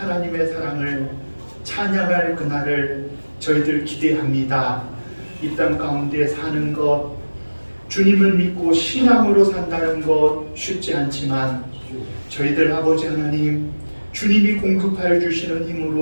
사랑을 찬양할 그날을 저희들 기대합니다. 이 땅 가운데 사는 것, 주님을 믿고 신앙으로 산다는 것 쉽지 않지만 저희들 아버지 하나님, 주님이 공급하여 주시는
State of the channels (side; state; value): both; inverted; correlation -1.00